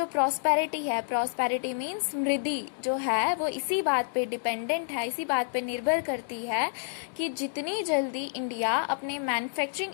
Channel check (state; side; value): silent; right; digital silence